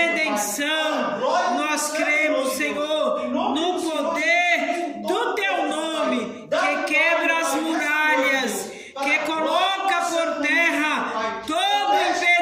Nós cremos, Senhor, no poder do Teu nome, que quebra as muralhas, que coloca por terra todo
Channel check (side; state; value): both; identical; correlation 1.00